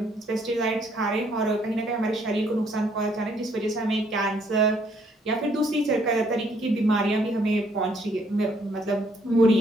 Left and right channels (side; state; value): both; normal; correlation 0.67